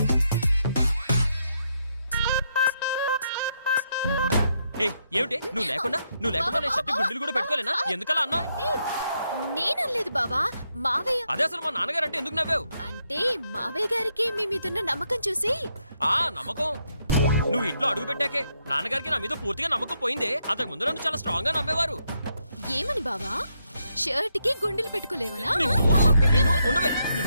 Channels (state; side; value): inverted; both; correlation -0.78